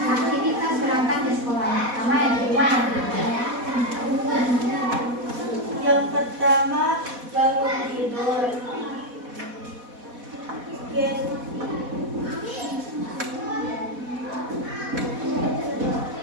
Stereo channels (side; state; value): left; late; 4.1 ms